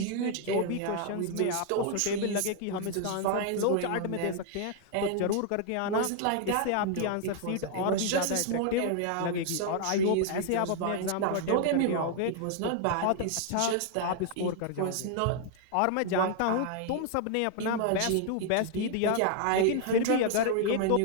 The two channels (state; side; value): different; both; correlation 0.00